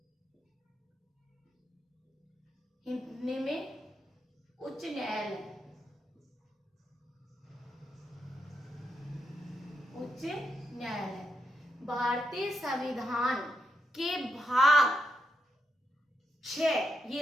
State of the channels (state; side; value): normal; both; correlation 0.82